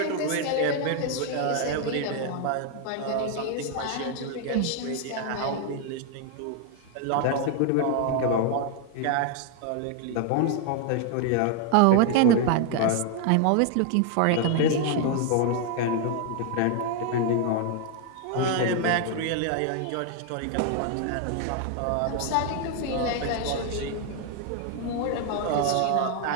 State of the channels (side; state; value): both; different; correlation 0.00